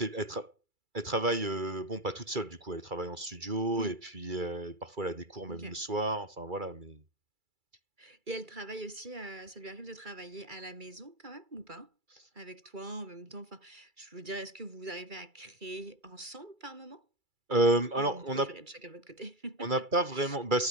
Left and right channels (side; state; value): left; late; 2.3 ms